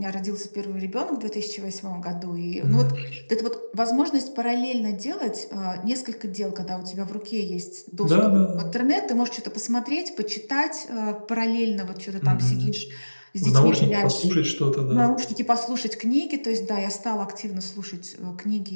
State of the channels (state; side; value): inverted; both; correlation -1.00